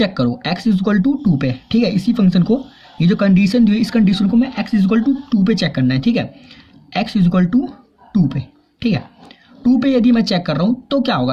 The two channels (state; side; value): identical; both; correlation 1.00